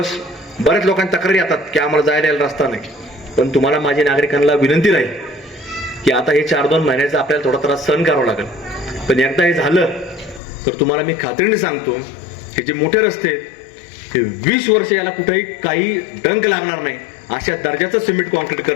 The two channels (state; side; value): drops out; right; at 10.4 s